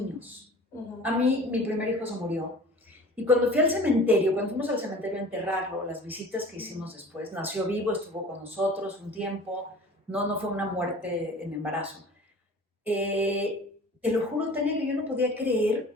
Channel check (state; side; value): normal; both; correlation 0.43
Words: A mí, mi primer hijo se murió. Y cuando fui al cementerio, cuando fuimos al cementerio a enterrarlo, las visitas que hicimos después, nació vivo, estuvo con nosotros un tiempo, no fue una muerte en embarazo. Te lo juro, Tania, que yo no podía